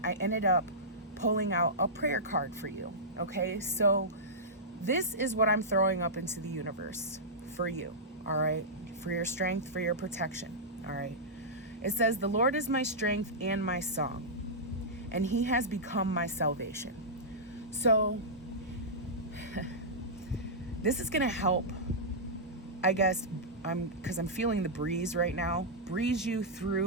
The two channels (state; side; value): normal; both; correlation -0.13